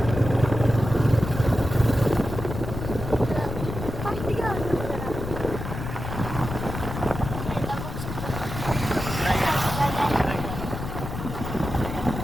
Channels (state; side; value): noise; left; rumble, 7 dB below the sound